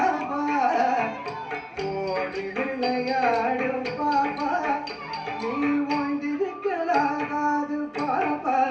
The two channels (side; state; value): both; identical; correlation 1.00